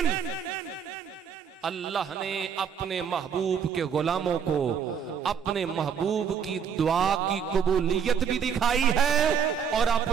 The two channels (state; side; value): quieter; left; 7.2 dB